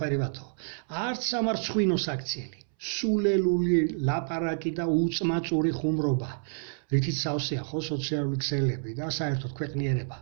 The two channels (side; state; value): left; silent; 59 dB below the other